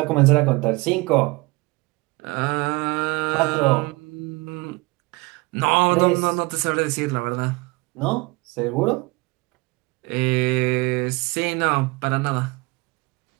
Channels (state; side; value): quieter; left; 24.9 dB